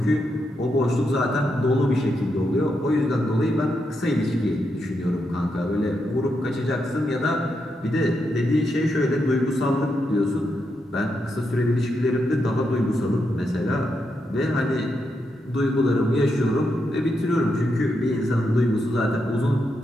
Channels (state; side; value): normal; both; correlation 0.83